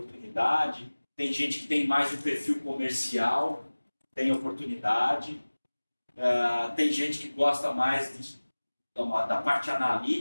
Tem gente que tem mais um perfil comercial, tem oportunidade. Tem gente que gosta mais da parte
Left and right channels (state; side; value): inverted; both; correlation -1.00